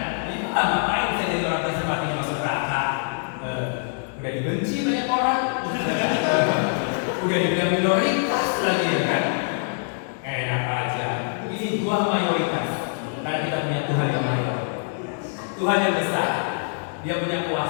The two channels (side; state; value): right; silent; digital silence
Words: Ini ngapain saya jadi orang Kristen matinya masuk neraka? Udah dibenci banyak orang, udah dibilang minoritas lagi ya kan? Enak aja. Ini Tuhan mayoritas. Karena kita punya Tuhan yang mayor, Tuhan yang besar, Dia punya